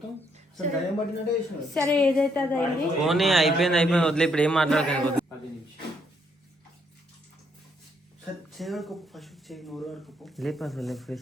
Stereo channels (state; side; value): normal; both; correlation 0.72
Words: అసలు దయ్యం పట్టినట్టే చేసినావు. సరే ఏదైతే అది అయింది. పోనీ అయిపోయింది వదిలే, ఇప్పుడు ఏం మాట్లాడకండి. సరే చేయడుకోపు ఫస్ట్ చేయి, నోరు ఆడుకోపు, లేపు అసలు